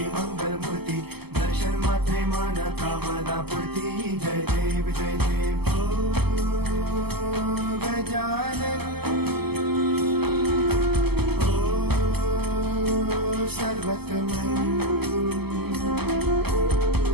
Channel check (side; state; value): left; late; 0.96 ms